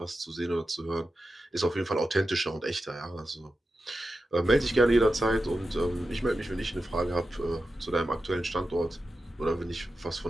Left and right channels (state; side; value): normal; both; correlation 0.91